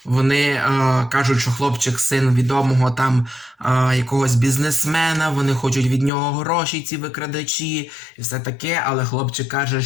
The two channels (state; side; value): drops out; right; at 6.1 s